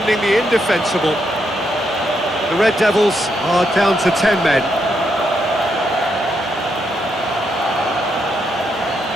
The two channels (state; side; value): normal; both; correlation 0.79